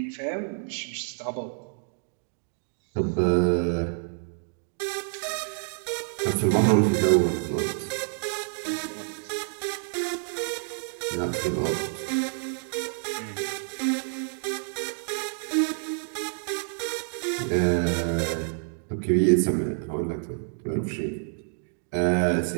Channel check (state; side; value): silent; left; 59 dB below the other